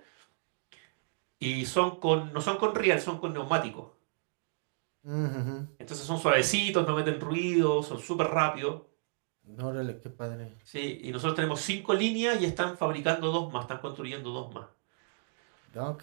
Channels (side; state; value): left; silent; digital silence